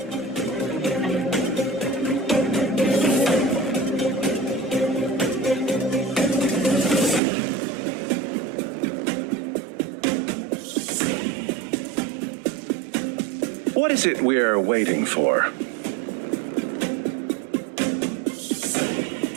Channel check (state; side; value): drops out; left; at 7.2 s